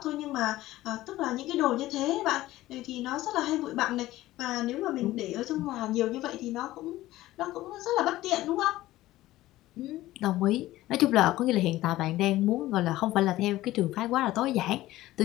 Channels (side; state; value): right; quieter; 16.3 dB